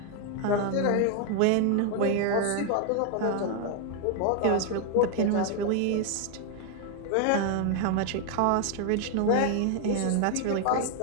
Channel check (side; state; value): both; different; correlation 0.00